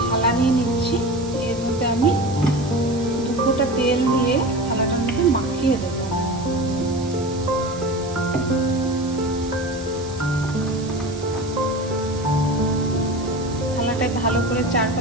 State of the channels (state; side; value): noise; right; hiss, 17 dB below the sound